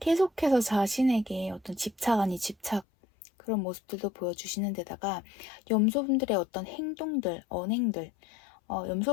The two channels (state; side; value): drops out; right; at 2.9 s